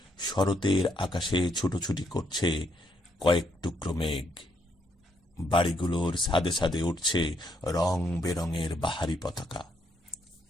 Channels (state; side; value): normal; both; correlation 0.75